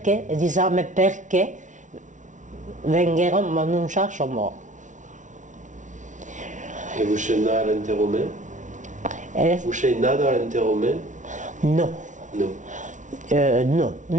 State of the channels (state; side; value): late; left; 0.37 ms